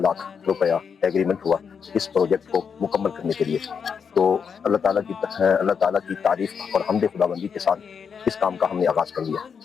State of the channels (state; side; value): quieter; right; 6.5 dB